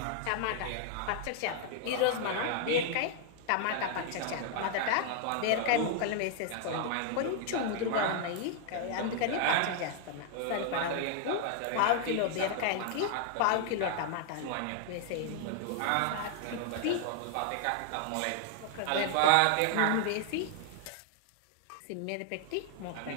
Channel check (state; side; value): different; both; correlation 0.00